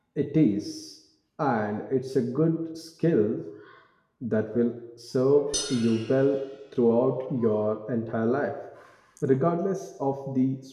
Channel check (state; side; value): identical; both; correlation 1.00